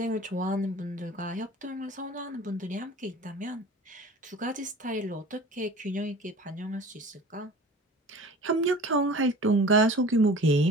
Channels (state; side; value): normal; both; correlation 0.41